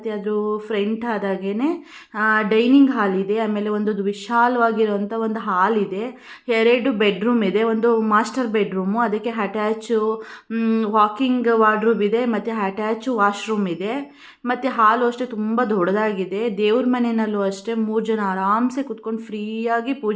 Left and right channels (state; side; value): identical; both; correlation 1.00